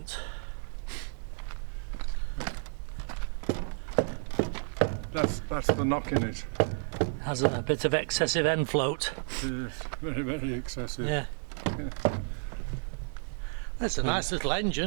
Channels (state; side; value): silent; left; digital silence